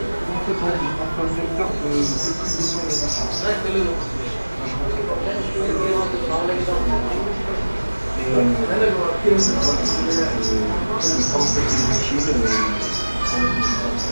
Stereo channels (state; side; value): inverted; both; correlation -1.00